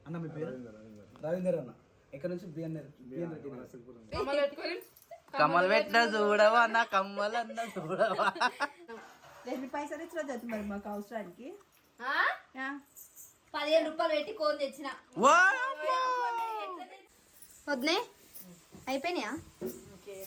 అన్న మీ పేరు? రవీందర్ అన్న. ఎక్కడ నుంచి? బిఎన్ రెడ్డి. కమ్మలు పెట్టిన చూడవా అన్న, కమ్మలు అన్న చూడవా. ఎన్ని పైసలు ఇచ్చిన మరి మాకు అవసరానికి 15 రూపాయలు పెట్టి కోన్ తెచ్చిన. వద్దే అయిపోయినాయా?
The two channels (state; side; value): identical; both; correlation 1.00